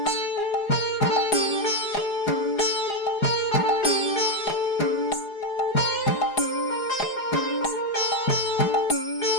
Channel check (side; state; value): right; late; 4.8 ms